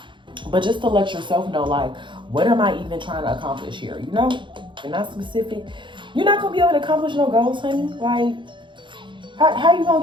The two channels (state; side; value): late; left; 0.23 ms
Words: But just to let yourself know, like, what am I even trying to accomplish here? You know, you're not specific. You're not going to be able to accomplish no goals, honey. Like, how you going